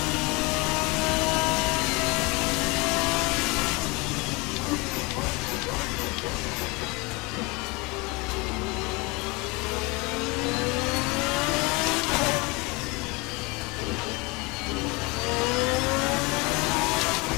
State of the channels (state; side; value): quieter; right; 26.6 dB